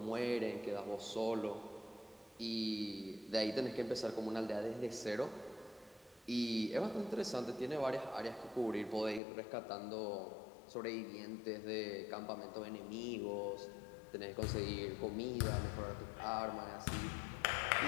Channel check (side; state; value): right; drops out; at 9.2 s